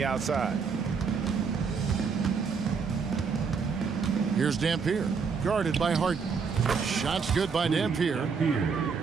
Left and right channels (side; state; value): left; quieter; 5.6 dB